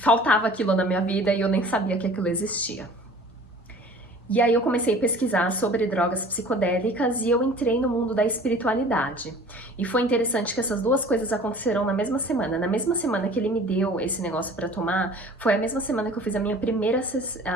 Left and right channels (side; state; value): both; normal; correlation 0.46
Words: aquilo na minha vida e eu nem sabia que aquilo existia. E aí eu comecei a pesquisar sobre drogas psicodélicas e eu entrei no mundo da espiritualidade. E foi interessante que essas duas coisas aconteceram na mesma semana. Na mesma semana que ele me deu esse negócio para tomar, foi a mesma semana que eu fiz a minha primeira